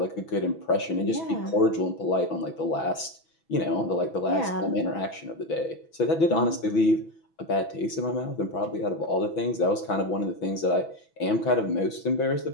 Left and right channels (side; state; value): right; late; 6.1 ms